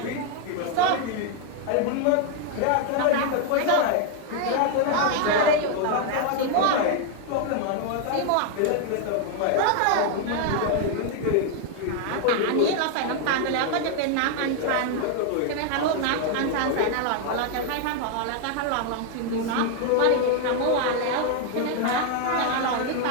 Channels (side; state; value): both; different; correlation 0.00